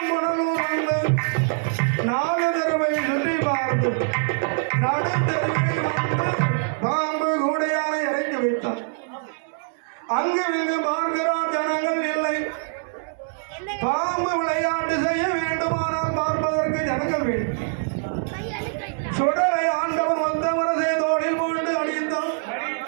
வந்து 4 தடவை சுற்றி பார்த்து நடுத்தருவில் வந்து பாம்பு கூடையானை இறக்கி வைத்தார். அங்கு இங்கு பார்க்கிறார், ஜனங்கள் இல்லை. பாம்பு விளையாட்டு செய்ய வேண்டுமானால் பார்ப்பதற்கு ஜனங்கள் வேண்டும். சுடலை ஆண்டவன் வந்த முரசை தோளில் போட்டு அடித்தான்.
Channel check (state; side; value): silent; left; digital silence